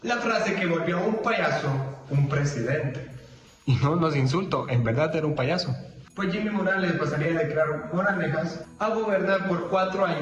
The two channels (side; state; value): both; identical; correlation 1.00